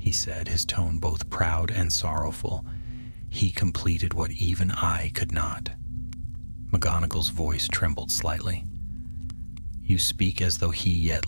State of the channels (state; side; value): inverted; both; correlation -1.00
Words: said, his tone both proud and sorrowful. "He completed what even I could not." McGonagall's voice trembled slightly. "You speak as though he